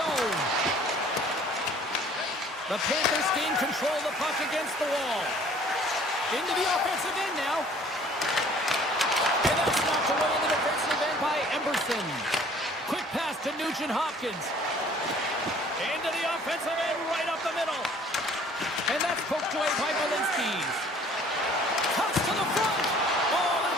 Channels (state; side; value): normal; both; correlation 0.54